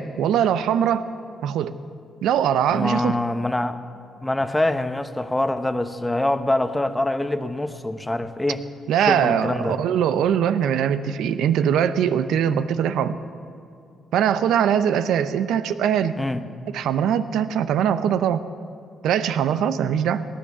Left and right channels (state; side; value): quieter; left; 5.4 dB